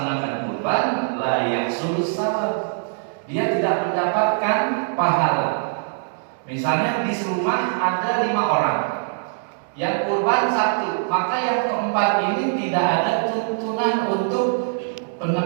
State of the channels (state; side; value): silent; left; digital silence